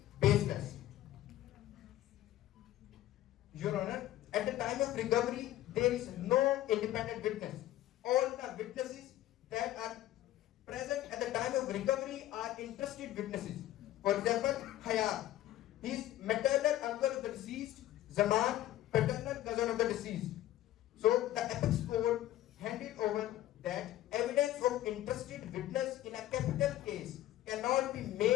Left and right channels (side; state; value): right; quieter; 14.1 dB